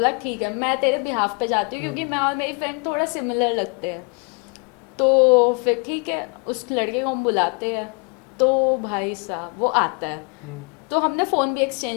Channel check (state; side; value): quieter; right; 33.7 dB